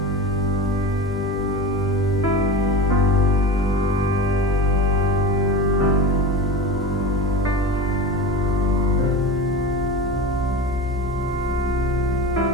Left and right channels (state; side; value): normal; both; correlation 0.28